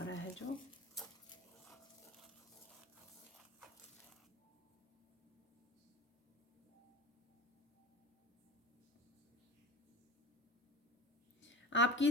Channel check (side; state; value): both; normal; correlation 0.33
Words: रहा है जो आपकी